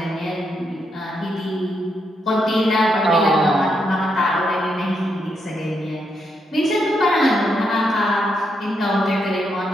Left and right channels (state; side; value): normal; both; correlation 0.80